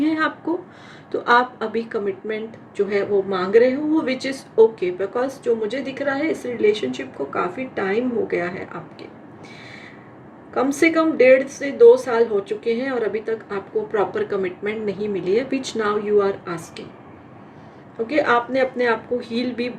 है आपको, तो आप अभी कमिटमेंट जो है वो मांग रहे हो, वो विच इज़ ओके। बिकॉज जो मुझे दिख रहा है, इस रिलेशनशिप को काफ़ी टाइम हो गया है आपके। कम से कम 1.5 से 2 साल हो चुके हैं और अभी तक आपको प्रॉपर कमिटमेंट नहीं मिली है, which now you are asking. Okay, आपने अपने आप को हील भी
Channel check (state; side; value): identical; both; correlation 1.00